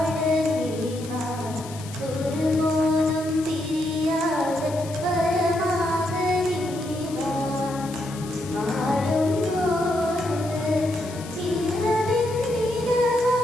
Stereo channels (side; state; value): left; noise; hiss, 16 dB below the sound